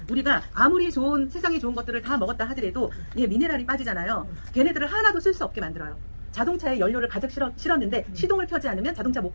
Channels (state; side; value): inverted; both; correlation -1.00